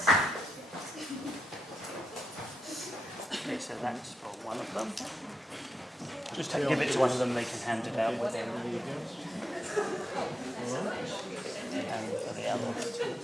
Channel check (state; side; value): normal; both; correlation 0.85